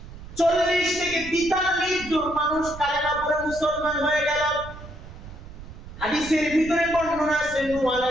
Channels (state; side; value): noise; right; rumble, 14 dB below the sound